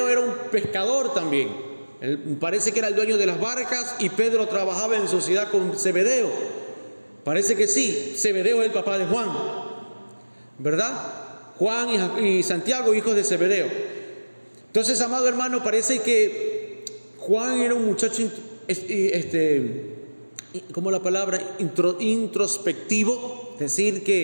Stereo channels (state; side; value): inverted; both; correlation -1.00